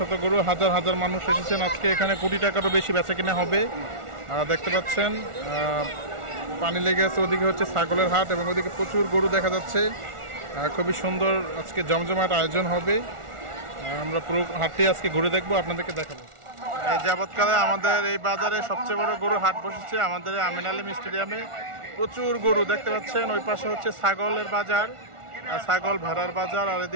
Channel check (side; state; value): left; late; 1.4 ms